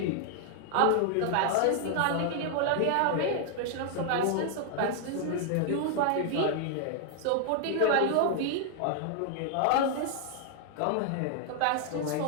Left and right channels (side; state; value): both; different; correlation 0.00